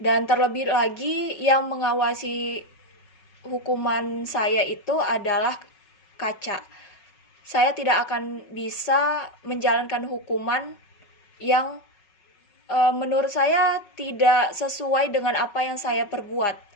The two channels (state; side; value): late; right; 5.4 ms